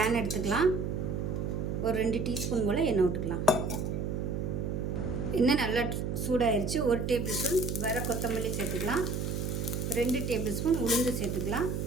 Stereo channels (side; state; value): right; noise; hum, 2 dB below the sound